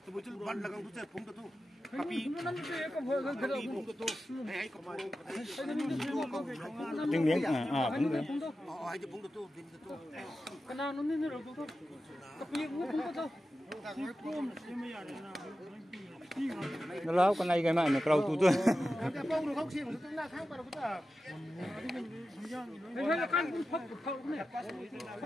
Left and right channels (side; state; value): both; normal; correlation 0.92